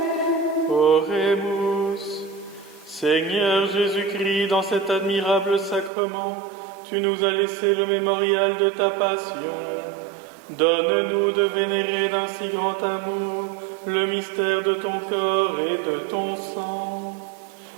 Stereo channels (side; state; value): left; drops out; at 5.9 s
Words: Oremus. Seigneur Jésus-Christ, dans cet admirable sacrement, tu nous as laissé le mémorial de ta passion. Donne-nous de vénérer d'un si grand amour le mystère de ton corps et de ton sang,